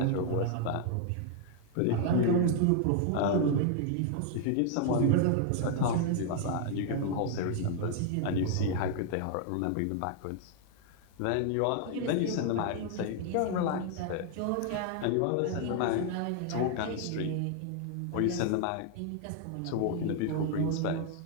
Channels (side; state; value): both; different; correlation 0.00